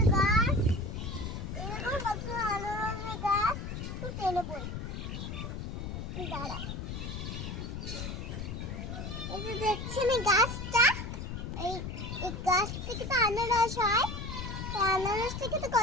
গাছ, এরকম কত আনারসের গাছ। তুই টেনে বই দাঁড়া। এই যে দেখছেন এই গাছটা, এই গাছ থেকে তো আনারস হয়। আনারস থেকে তো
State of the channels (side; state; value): left; noise; rumble, 6 dB below the sound